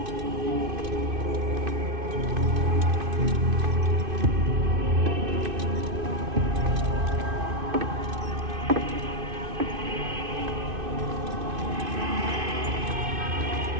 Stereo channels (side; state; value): left; late; 2.5 ms